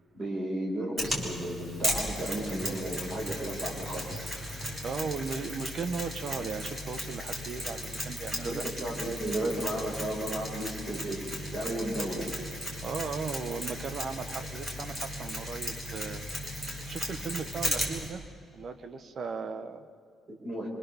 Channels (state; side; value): normal; both; correlation 0.76